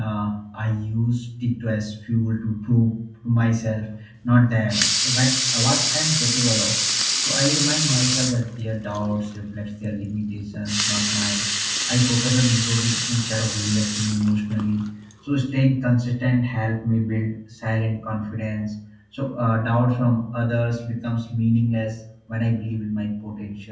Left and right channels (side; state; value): both; identical; correlation 1.00